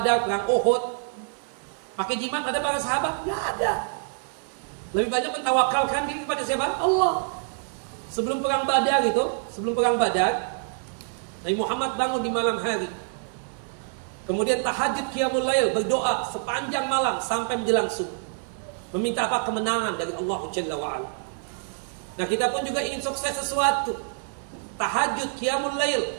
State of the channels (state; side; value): silent; left; digital silence